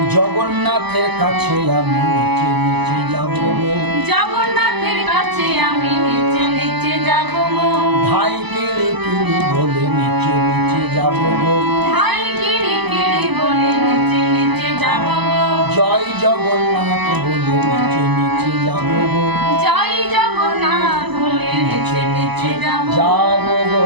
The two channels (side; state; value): left; late; 1.0 ms